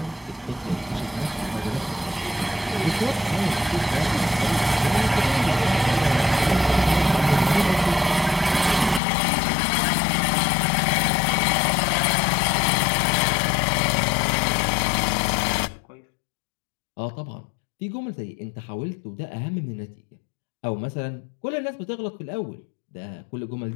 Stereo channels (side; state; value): right; drops out; at 9.0 s